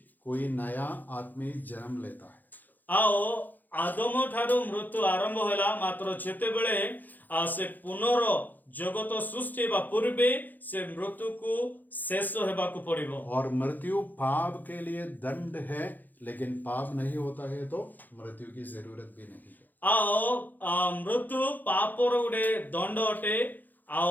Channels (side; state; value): right; late; 0.085 ms